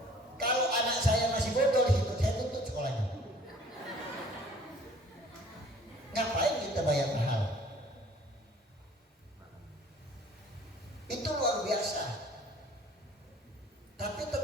Kalau anak saya masih bodoh di situ, saya tuntut sekolahnya. Ngapain kita bayar mahal? Itu luar biasa. Tapi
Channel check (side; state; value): both; normal; correlation 0.53